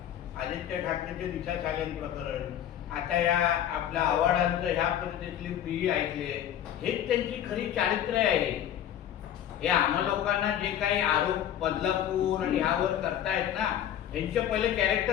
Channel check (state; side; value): quieter; right; 10.7 dB